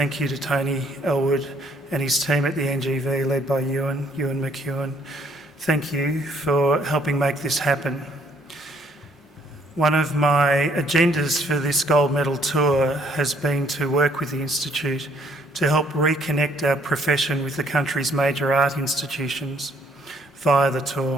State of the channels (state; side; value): normal; both; correlation 0.65